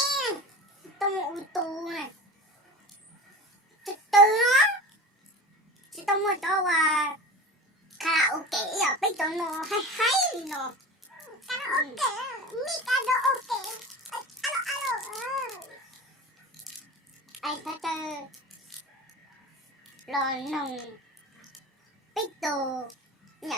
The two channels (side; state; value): both; normal; correlation 0.33